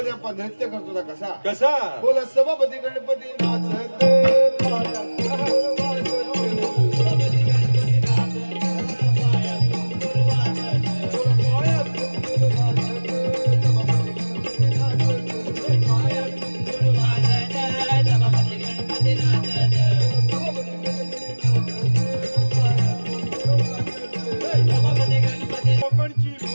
आपण नृत्य करतो ना कसा कसा? बोला सभापती गणपती नाचत कोकणची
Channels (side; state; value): both; inverted; correlation -1.00